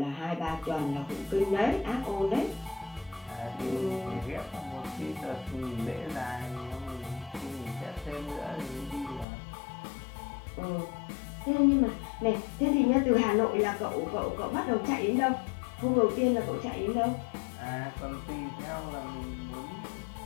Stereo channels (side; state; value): right; drops out; at 9.2 s